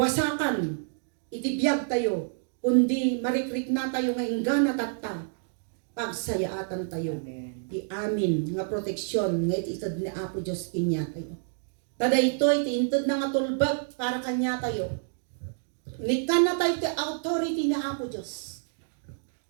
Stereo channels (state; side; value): silent; left; digital silence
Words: iti biyag tayo, kundi marikrik na tayo nga ingana tatta, pagsayaatan tayo. Amen. Ti amin nga proteksyon nga ititad ni Apo Diyos kinya tayo. Tada ito'y ti intad na nga tulbag para kanya tayo. Nikan na tayo ti authority ni Apo Diyos.